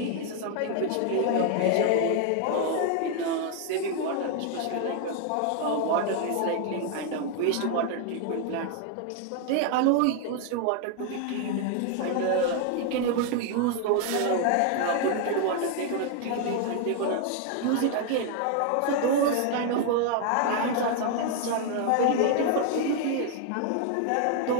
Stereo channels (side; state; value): both; different; correlation 0.00